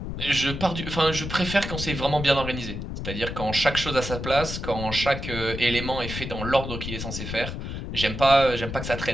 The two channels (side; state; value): left; noise; rumble, 6 dB below the sound